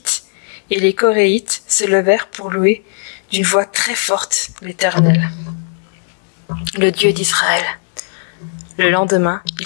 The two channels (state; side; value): silent; right; digital silence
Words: et les Coréites, se levèrent pour louer d'une voix très forte l'Éternel, le Dieu d'Israël. Le lendemain,